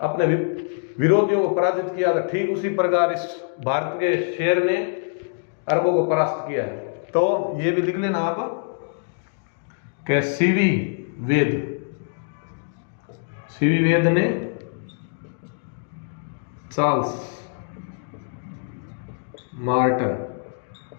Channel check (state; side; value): silent; right; digital silence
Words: विरोधियों को पराजित किया था, ठीक उसी प्रकार इस भारत के शेर ने अरबों को परास्त किया है। तो ये भी लिख लेना आप कि सीवी वेद ने चार्ल्स मार्टन